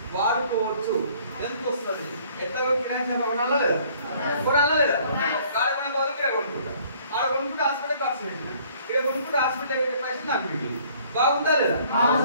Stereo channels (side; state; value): both; inverted; correlation -0.58